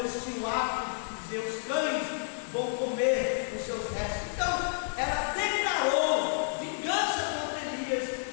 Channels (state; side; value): silent; right; 58 dB below the other